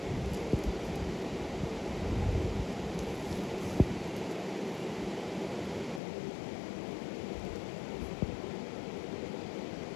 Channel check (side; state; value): right; drops out; at 6.0 s